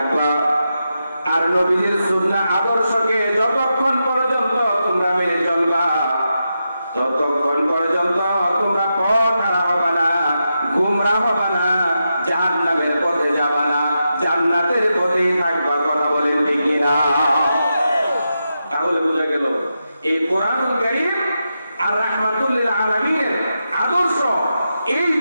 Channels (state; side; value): inverted; both; correlation -0.87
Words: আর নবীজির সুন্নাহ আদর্শকে যতক্ষণ পর্যন্ত তোমরা মেনে চলবা, ততক্ষণ পর্যন্ত তোমরা পথ হারা হবে না, গুমরাহ হবে না, জাহান্নামের পথে যাবা না, জান্নাতের পথেই থাকবা। কথা বলেন ঠিক কিনা? তাহলে বোঝা গেল এই কোরআনুল কারীম আর রাহমাতুল্লিল আলামিনের আদর্শ, এই